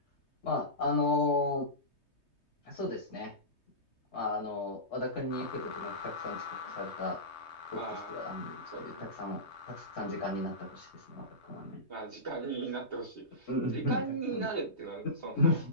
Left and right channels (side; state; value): right; late; 3.2 ms